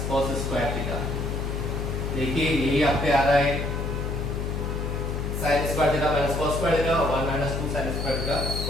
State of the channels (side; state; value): left; noise; hum, 2 dB below the sound